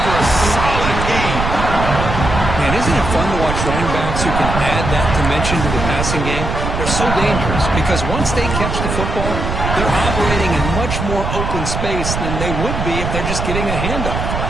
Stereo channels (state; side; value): noise; right; rumble, 3 dB below the sound